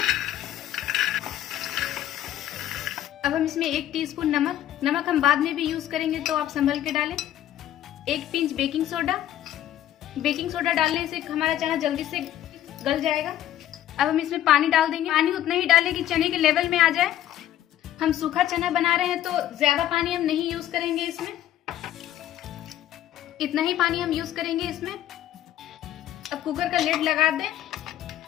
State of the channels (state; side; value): quieter; right; 12.3 dB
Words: अब हम इसमें 1 टीस्पून नमक हम बाद में भी यूज करेंगे तो आप संभल के डालें। 1 पिंच बेकिंग सोडा डालने से हमारा चना जल्दी से गल जाएगा। अब हम इसमें पानी डाल देंगे। पानी उतना ही डालें कि चने के लेवल में आ जाए। हम सूखा चना बना रहे हैं तो ज्यादा पानी हम नहीं यूज करेंगे इसमें, इतना ही पानी हम यूज करेंगे इसमें। अब कुकर का लिड लगा दें